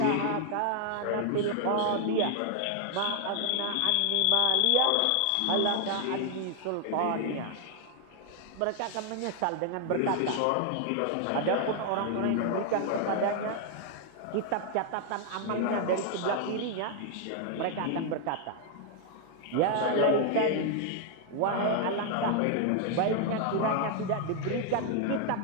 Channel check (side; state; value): both; different; correlation 0.00